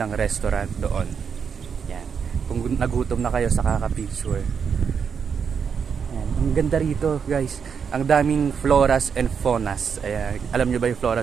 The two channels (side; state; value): left; quieter; 6.6 dB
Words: restaurant doon. Yan. Kung nagutom na kayo sa kaka-picture. Yan. Ang ganda rito, guys. Ang daming floras and faunas. Ayan. Alam nyo ba yung